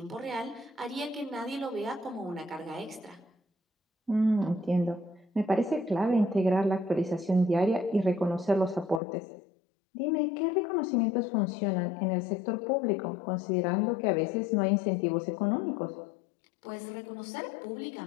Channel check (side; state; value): right; drops out; at 9.0 s